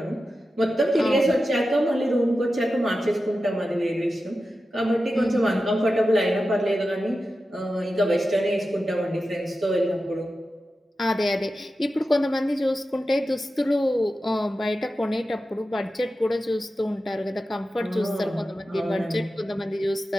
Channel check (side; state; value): both; normal; correlation 0.92